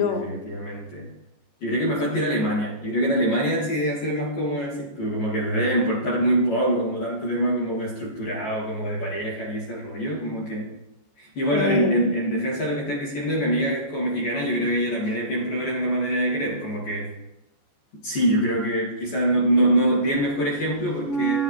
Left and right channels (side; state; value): right; late; 14 ms